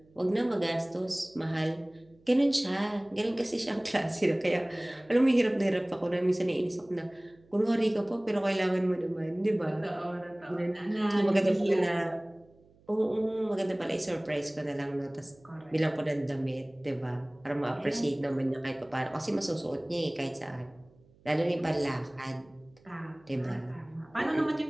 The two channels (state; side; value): noise; right; hum, 30 dB below the sound